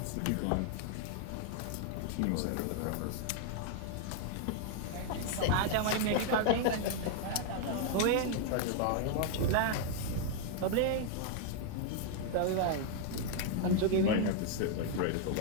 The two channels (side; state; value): both; different; correlation 0.00